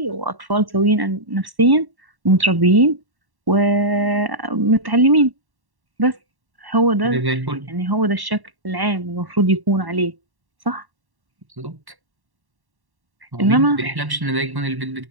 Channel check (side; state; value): left; late; 1.1 ms